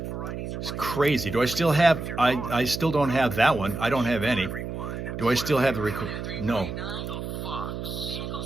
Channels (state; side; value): noise; right; hum, 6 dB below the sound